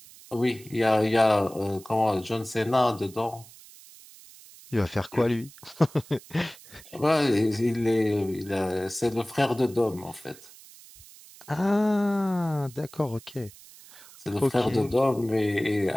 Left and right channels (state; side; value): noise; right; hiss, 21 dB below the sound